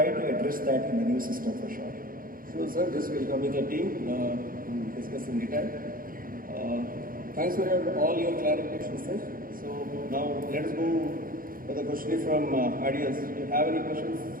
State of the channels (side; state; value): left; late; 0.41 ms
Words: to address that in the new system for sure. Sure, sir. This will come with the team to discuss in detail. Thanks for all your clarifications, sir. So now let us go for the question from audience. Do you have any questions?